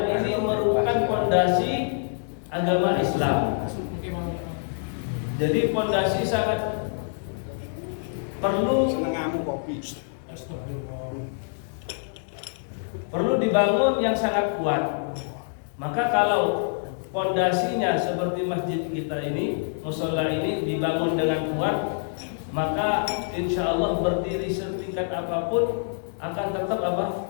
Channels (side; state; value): right; silent; digital silence